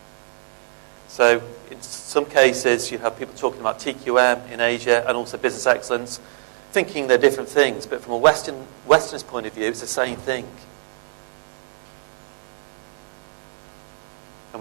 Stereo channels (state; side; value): silent; left; 63 dB below the other